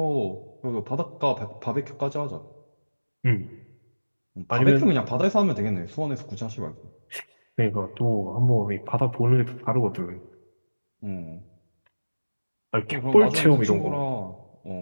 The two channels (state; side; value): inverted; both; correlation -1.00